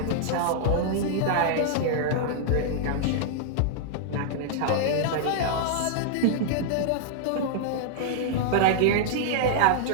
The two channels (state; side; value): different; both; correlation -0.01